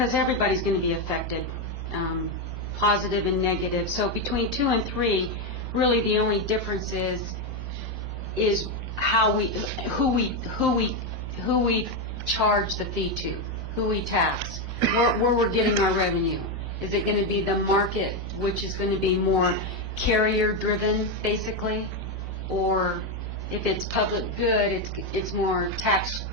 everybody's going to be affected, positive and negative. So between 2 and 3, really the only difference is who we charge the fee to, who we tax, where we're getting our revenue. Is it going to be the market, which is going to be more carrier-driven, basically, or if it's public good, it's more tax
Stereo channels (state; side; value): normal; both; correlation 0.07